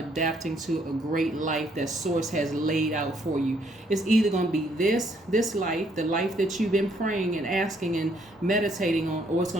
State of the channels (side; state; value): both; normal; correlation 0.69